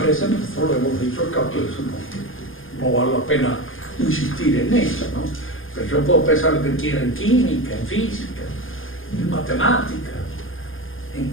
veces nosotros lo hemos dicho al cabo de eso, no vale la pena insistir en eso, ¿no? Pero yo puedo pensar lo que quiera en química, en física, en matemática. ¿En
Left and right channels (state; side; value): late; right; 0.59 ms